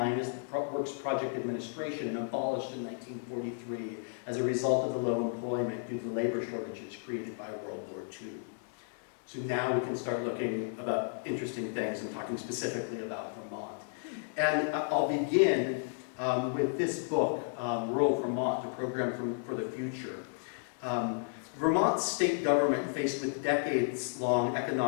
as the Works Project Administration and abolished in 1943 as a result of the low employment due to labor shortages created by World War II. So now we can start looking about interesting things and talking specifically about Vermont. And I'll begin with this book, Rural Vermont, a program for the future. Vermont's state government, faced with a decades-long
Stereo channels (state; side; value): silent; right; digital silence